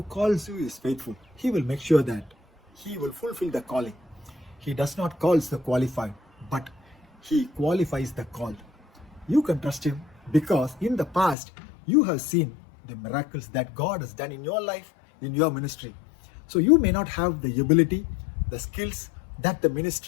calls you is faithful. He will make sure that he will fulfill the calling. He does not call the qualified, but he qualifies the called. You can trust him because in the past you have seen the miracles that God has done in your life, in your ministry. So you may not have the ability, the skills that the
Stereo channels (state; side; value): drops out; right; at 11.4 s